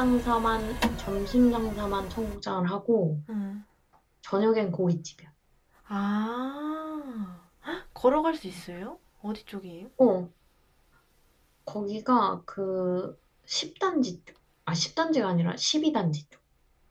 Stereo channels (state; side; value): identical; both; correlation 1.00